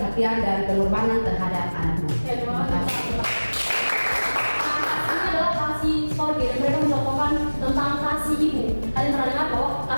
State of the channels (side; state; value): both; inverted; correlation -1.00